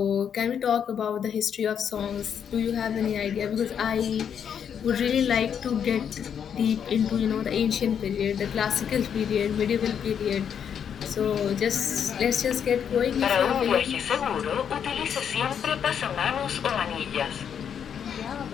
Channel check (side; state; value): right; quieter; 8.1 dB